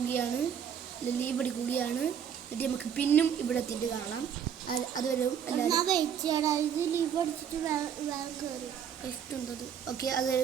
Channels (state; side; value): quieter; left; 8.3 dB